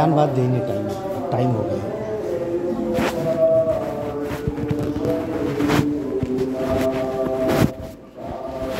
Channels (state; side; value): identical; both; correlation 1.00